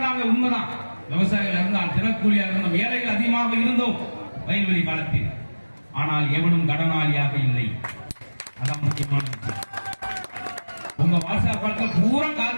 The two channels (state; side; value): inverted; both; correlation -1.00